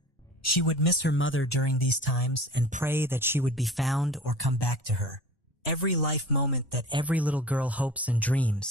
She would miss her mother during these times and pray that she would be found or come back to her. Every life moment that every little girl hopes and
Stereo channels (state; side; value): normal; both; correlation 0.41